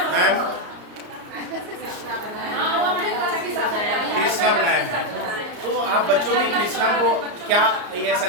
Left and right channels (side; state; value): left; late; 34 ms